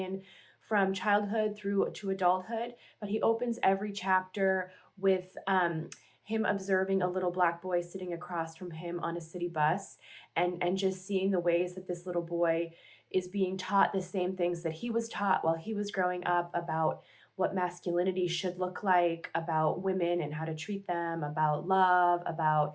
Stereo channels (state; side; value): identical; both; correlation 1.00